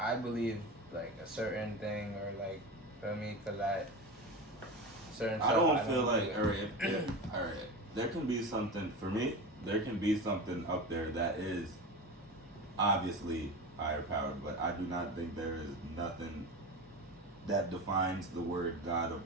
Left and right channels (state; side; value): normal; both; correlation 0.26